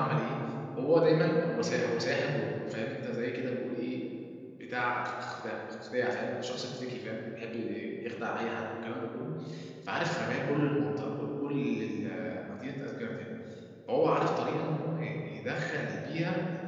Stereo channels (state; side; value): identical; both; correlation 1.00